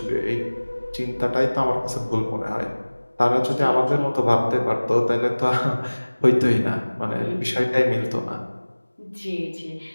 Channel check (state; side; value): inverted; both; correlation -1.00